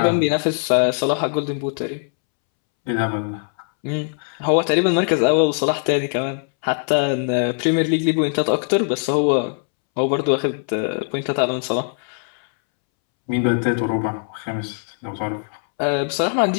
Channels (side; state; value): right; silent; 65 dB below the other